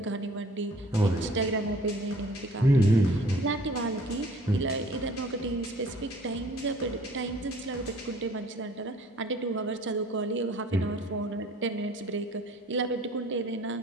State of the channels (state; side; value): normal; both; correlation 0.52